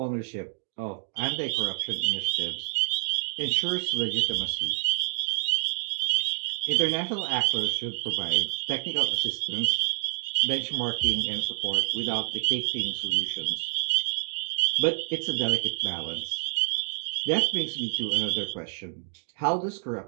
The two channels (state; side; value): silent; left; digital silence